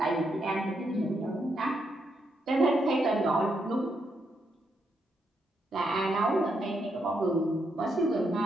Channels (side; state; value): both; normal; correlation 0.79